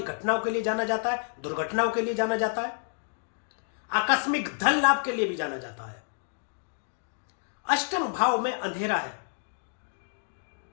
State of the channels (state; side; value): silent; right; digital silence